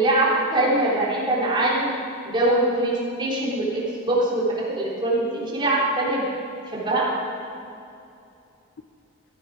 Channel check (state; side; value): normal; both; correlation 0.05